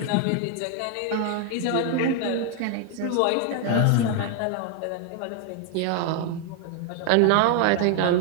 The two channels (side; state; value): both; different; correlation 0.00